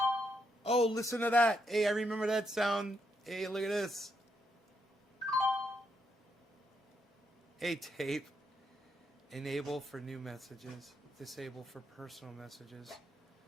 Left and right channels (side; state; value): both; normal; correlation 0.78